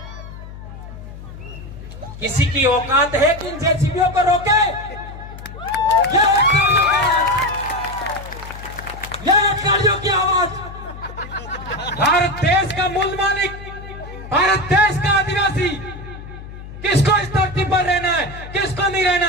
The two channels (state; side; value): noise; left; hum, 13 dB below the sound